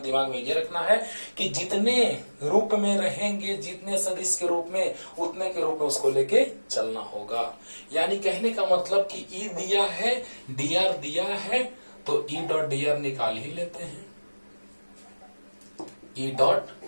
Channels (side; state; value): both; inverted; correlation -1.00